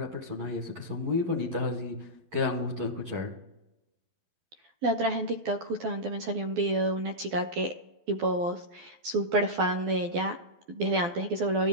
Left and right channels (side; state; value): left; late; 12 ms